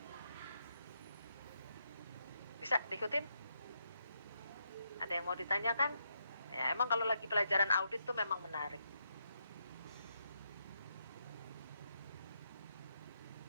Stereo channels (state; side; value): inverted; both; correlation -0.80